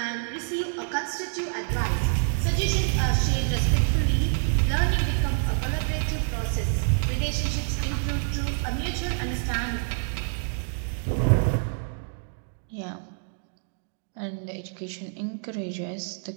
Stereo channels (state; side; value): silent; left; digital silence